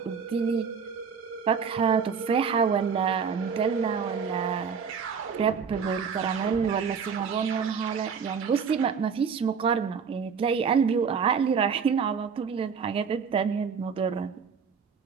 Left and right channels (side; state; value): left; quieter; 6.2 dB